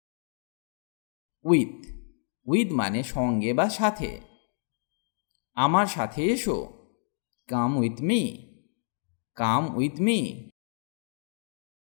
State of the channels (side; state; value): right; silent; digital silence